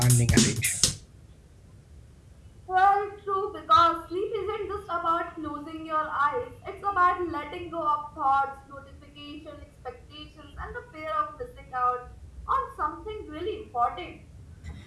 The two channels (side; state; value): both; identical; correlation 1.00